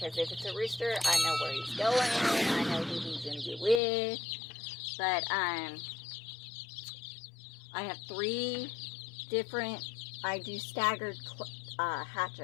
if it's a rooster, I know where he's going. I know who he's going to get with. But I have 3 different, I do staggered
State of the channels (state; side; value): drops out; right; at 3.8 s